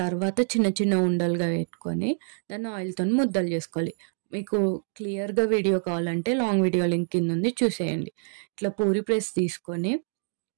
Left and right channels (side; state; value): left; silent; digital silence